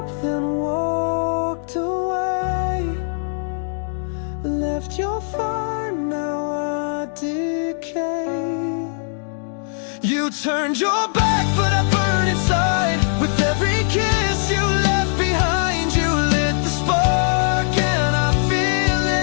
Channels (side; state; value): right; silent; 65 dB below the other